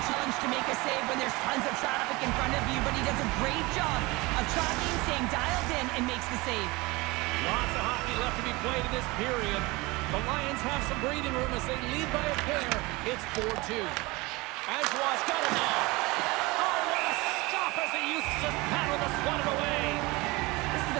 challenge to make a save when there's tons of traffic in front of you, but he does a great job of tracking, staying dialed in, and makes the save. Lots of hockey left to be played in this period. The Lions have some breathing room as they lead by a pair. It's 4-2. Ajoie's got it now. Oh, what a stop as he used to just paddle the swat it away. This is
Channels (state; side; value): quieter; left; 23.3 dB